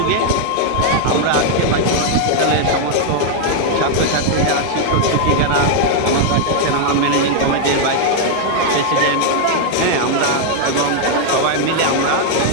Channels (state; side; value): different; both; correlation 0.00